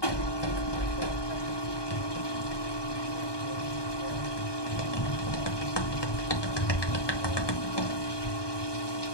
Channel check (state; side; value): late; right; 1.2 ms